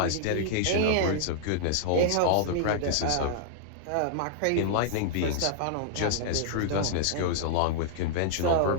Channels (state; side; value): different; both; correlation -0.01